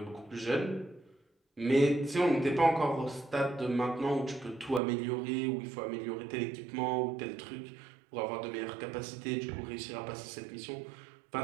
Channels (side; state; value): left; drops out; at 4.8 s